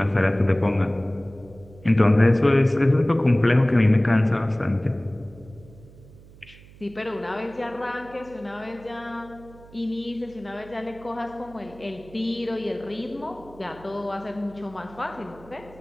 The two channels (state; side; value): noise; right; hum, 22 dB below the sound